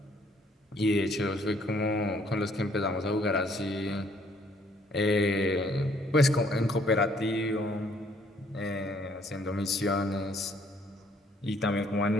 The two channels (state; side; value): normal; both; correlation 0.64